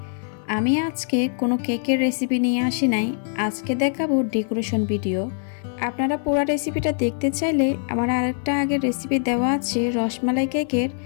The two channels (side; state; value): right; silent; 62 dB below the other